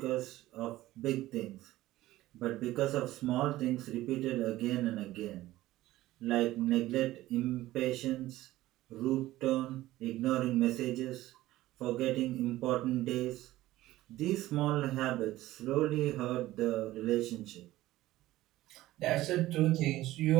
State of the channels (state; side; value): quieter; left; 16.2 dB